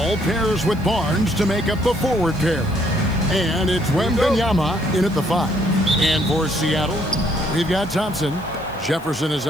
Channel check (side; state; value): right; noise; hiss, 25 dB below the sound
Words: pairs with Barnes to make up the forward pair. And it's Wembanyama in at the 5. And for Seattle, we've got Thompson. Jefferson is